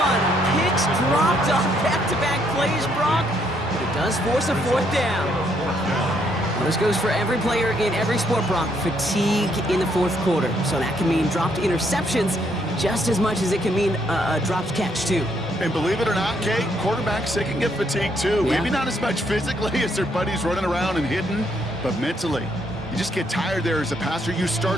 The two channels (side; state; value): both; normal; correlation 0.72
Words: Picks dropped on back-to-back plays, Brock. But it does force a fourth down. Well, this goes for every player in every sport, Brock. Fatigue in the fourth quarter. So that can mean dropped interceptions just as much as it can mean a dropped catch, too. And believe it or not, Kate, quarterbacks, they can get fatigued too. Yeah. Maybe not as much physically as their buddies running around and hitting, but mentally. You just get tired there as a passer. You